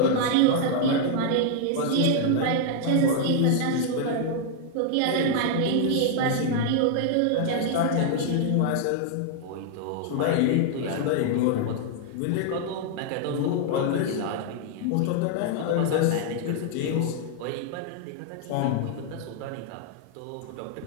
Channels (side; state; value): both; different; correlation 0.00